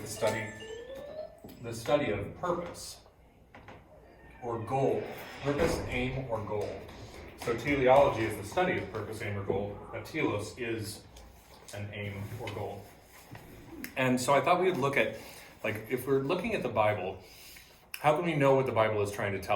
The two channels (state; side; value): identical; both; correlation 1.00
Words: the study of purpose or goal, purpose, aim, or goal. So teleology is the study of purpose, aim, or goal. Telos is an aim or goal. And so I thought we would look at, like, if we're looking at the Bible, how can we know what the Bible is trying to